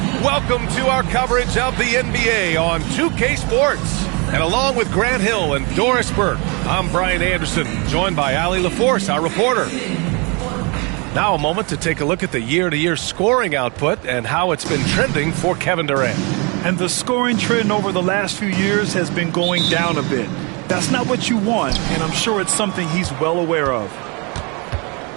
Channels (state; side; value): quieter; left; 30.9 dB